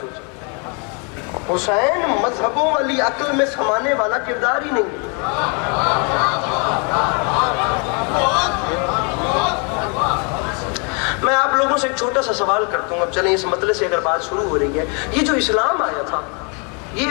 سوچا. حسین مذہبوں والی عقل میں سمانے والا کردار ہی نہیں. میں آپ لوگوں سے ایک چھوٹا سا سوال کرتا ہوں، اب چلیں اس مسئلے سے اگر بات شروع ہو رہی ہے، یہ جو اسلام آیا تھا، یہ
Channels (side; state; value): right; quieter; 35.6 dB